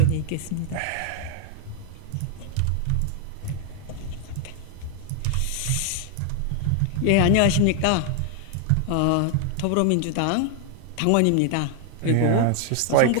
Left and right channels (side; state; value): both; different; correlation 0.00